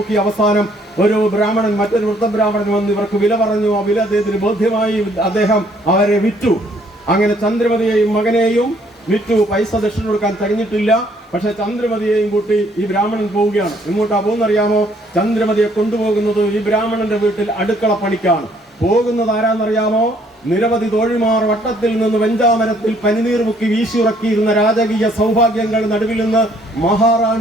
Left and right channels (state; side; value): normal; both; correlation 0.64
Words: അവസാനം ഒരു ബ്രാഹ്മണൻ, മറ്റൊരു വൃദ്ധബ്രാഹ്മണൻ വന്ന് ഇവർക്ക് വില പറഞ്ഞു. ആ വില അദ്ദേഹത്തിന് ബോധ്യമായി. അദ്ദേഹം അവരെ വിറ്റു. അങ്ങനെ ചന്ദ്രമതിയെയും മകനെയും വിറ്റു. പൈസ ദക്ഷിണ കൊടുക്കാൻ കഴിഞ്ഞിട്ടില്ല. പക്ഷെ ചന്ദ്രമതിയെയും കൂട്ടി ഈ ബ്രാഹ്മണൻ പോവുകയാണ്. എങ്ങോട്ടാ പോകുന്നറിയാമോ? ചന്ദ്രമതിയെ കൊണ്ടുപോകുന്നത് ഈ ബ്രാഹ്മണന്റെ വീട്ടിൽ അടുക്കള പണിക്കാണ്. പോകുന്നത് ആരാന്നറിയാമോ? നിരവധി തോഴിമാർ വട്ടത്തിൽ നിന്ന് വെഞ്ചാമരത്തിൽ പനിനീർ മുക്കി വീശിയുറക്കിയിരുന്ന രാജകീയ സൗഭാഗ്യങ്ങൾ നടുവിൽ നിന്ന്